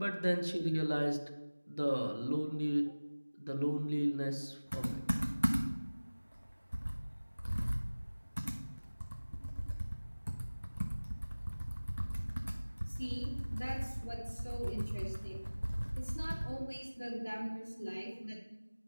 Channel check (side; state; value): both; inverted; correlation -1.00